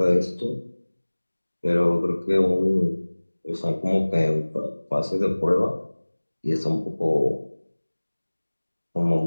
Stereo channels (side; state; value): both; inverted; correlation -1.00